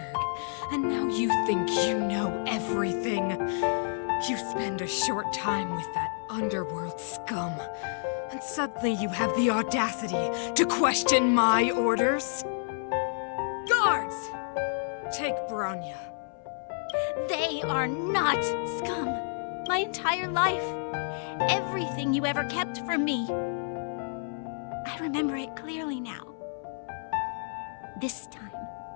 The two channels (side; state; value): right; silent; 58 dB below the other